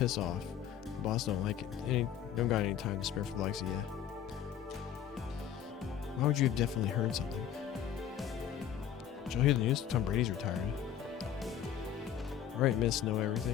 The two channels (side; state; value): right; quieter; 9.5 dB